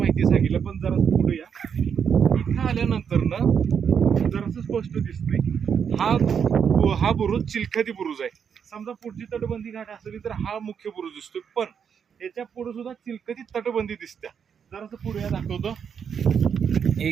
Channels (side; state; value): left; quieter; 7.3 dB